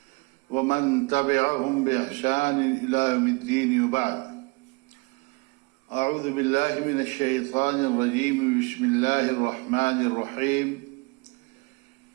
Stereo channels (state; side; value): quieter; left; 28.4 dB